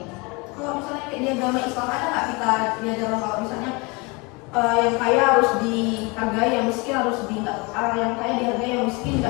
misalnya kayak di agama Islam ada nggak kita diajarkan kalau misalnya yang kaya harus dihargai, yang miskin harus yang kaya dihargai, yang miskin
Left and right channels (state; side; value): quieter; right; 27.8 dB